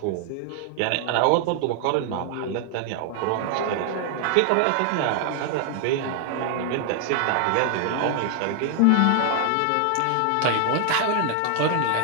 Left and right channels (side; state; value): both; different; correlation 0.00